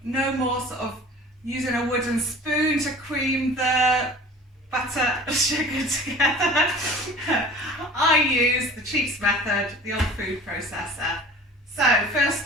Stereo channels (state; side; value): normal; both; correlation 0.43